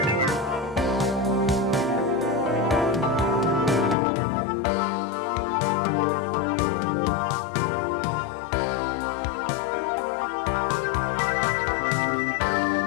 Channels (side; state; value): right; drops out; at 4.0 s